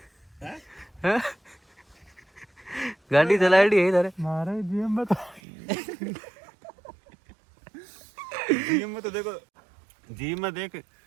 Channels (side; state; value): left; drops out; at 5.4 s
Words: हैं गाड़ी चलाई है इधर मारे जीएम में तो जीम में तो देखो जीम में देख